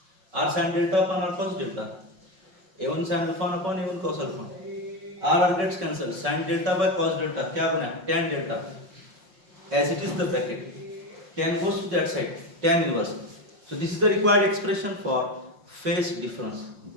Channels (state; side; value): late; left; 5.6 ms